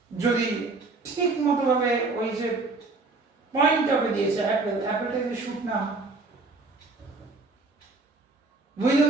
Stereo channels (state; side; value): quieter; left; 3.6 dB